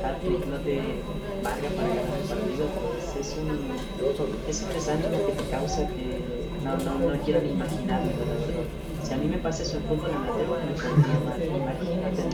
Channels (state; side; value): identical; both; correlation 1.00